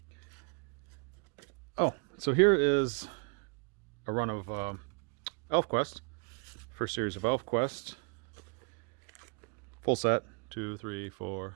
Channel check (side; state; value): left; quieter; 36.3 dB